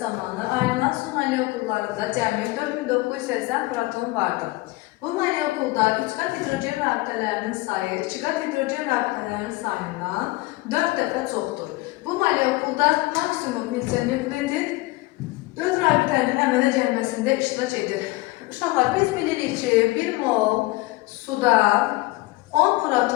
zamanı ayrılan su molekullarında cəmi 4980 proton vardır. Bu molekulda 3 qat hidrogen rabitələrinin sayı 2 qat hidrogen rabitələrinin sayından 4 dəfə çoxdur. Bu molekulda maksimum neçə nükleotid 4 rabitənin əmələ gəlməsində iştirak edir. Uşaqlar, biz bilirik ki, 1 mol suda 10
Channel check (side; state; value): right; quieter; 21.1 dB